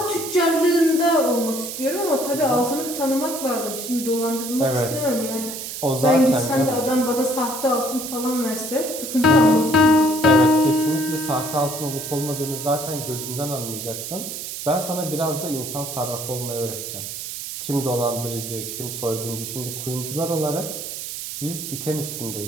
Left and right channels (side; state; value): right; noise; hiss, 7 dB below the sound